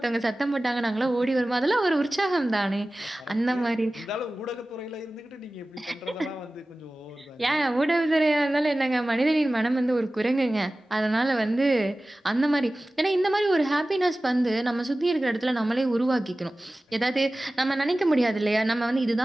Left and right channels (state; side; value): normal; both; correlation 0.97